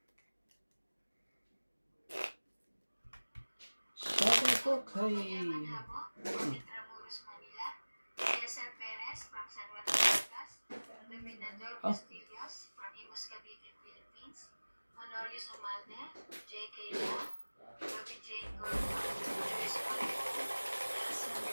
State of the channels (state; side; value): inverted; both; correlation -1.00